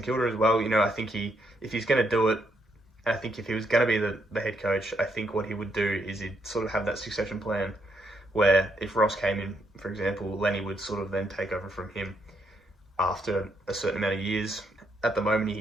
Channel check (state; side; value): normal; both; correlation 0.75